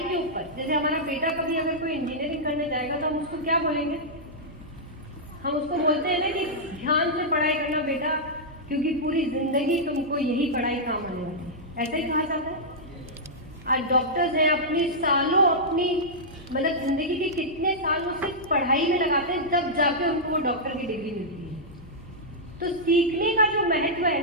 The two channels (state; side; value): normal; both; correlation -0.10